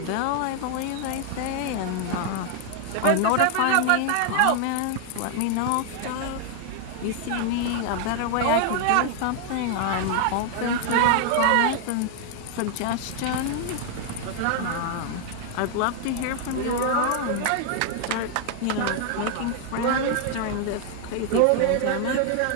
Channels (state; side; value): different; both; correlation 0.00